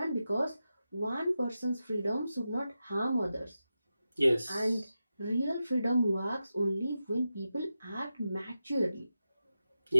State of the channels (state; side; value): inverted; both; correlation -0.91